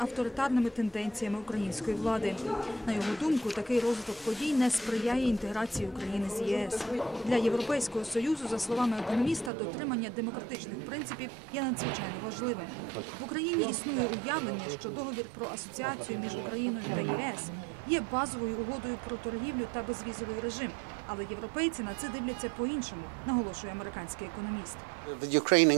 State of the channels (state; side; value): drops out; left; at 9.5 s